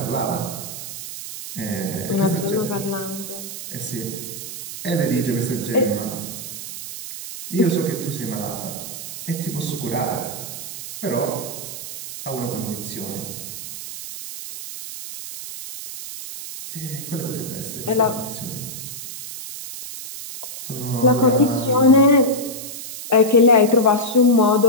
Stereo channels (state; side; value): noise; right; hiss, 9 dB below the sound